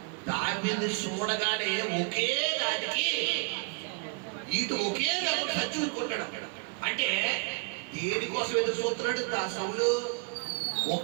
దావీదుని చూడగానే ఒకే దానికి ఇటు ఒకే దెబ్బకు చచ్చుకుంటాడు. అంటే దేనికోసం ఎదురు చూస్తున్నాడు సౌలు?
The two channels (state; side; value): quieter; left; 34.3 dB